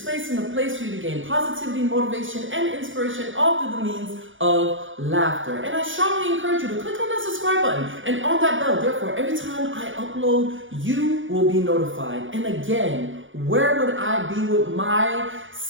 and a place for you to gain positivity, motivation, and inspiration, all through the means of laughter. And I strongly encourage you to click on that subscribe button and on that bell. Therefore, every time I upload, you will be notified. And again, where would I be with my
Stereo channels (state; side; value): late; left; 0.57 ms